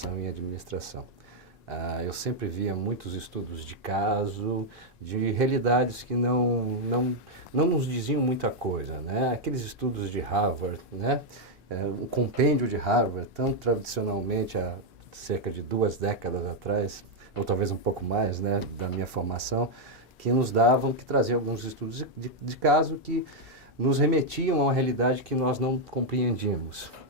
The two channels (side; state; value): both; normal; correlation -0.01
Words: em administração. Eu sempre via muitos estudos de caso, de realidades que não nos diziam muita coisa, né? Aqueles estudos de Harvard, né? O compêndio de Harvard, tão tradicionalmente há cerca de 2 décadas atrás, ou talvez um pouco mais, né, da minha formação, que traziam alguns estudos de caso que nos remetiam a uma realidade que nós não compreendíamos,